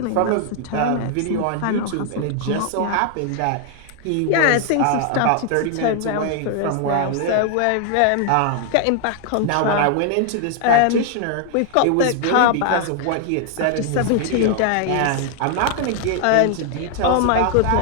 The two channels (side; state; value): both; different; correlation 0.00